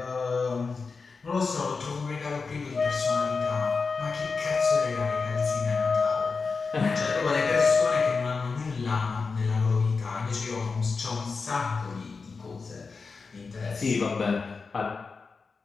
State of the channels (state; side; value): quieter; right; 4.6 dB